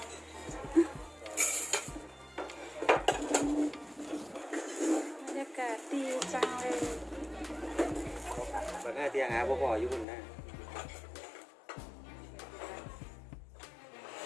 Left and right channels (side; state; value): right; drops out; at 10.1 s